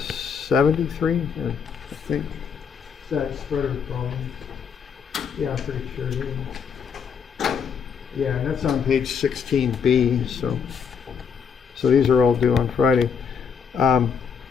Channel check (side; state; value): right; quieter; 6.6 dB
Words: I think. Is that spreader problem? Yeah, I'm pretty sure it is. Yeah, and that's on page 16B. So these are all due on Friday. All